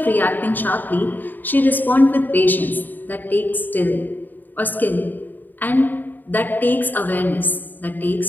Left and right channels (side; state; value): right; late; 0.088 ms